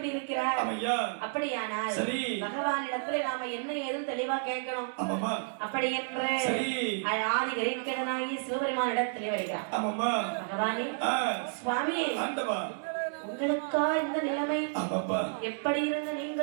இருக்கிறார். அப்படியானால் பகவான் இடத்துல நாம என்ன ஏதும் தெளிவா கேட்கணும். அப்படி என்று ஆதி கிரீக்கனாகி சிவபெருமான் இடத்திலே வருகிறார். பகவானே சுவாமி உங்களுக்கா இந்த நிலைமை? எப்படி இருந்த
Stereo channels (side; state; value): left; silent; 57 dB below the other